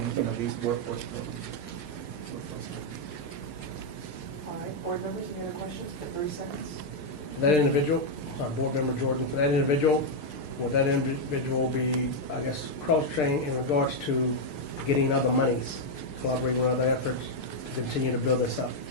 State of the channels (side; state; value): right; late; 6.6 ms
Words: these workforce programs. All right, board members, any other questions? Got 30 seconds. For that individual, sorry, Board Member Jordan, for that individual, will that individual be, I guess, cross-trained in regards to getting other monies, collaborating with other efforts to continue to build this up?